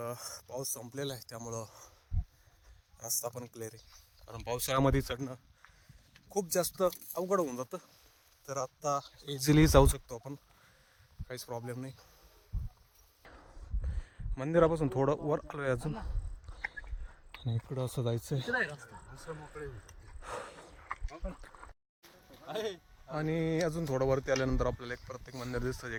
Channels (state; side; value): identical; both; correlation 1.00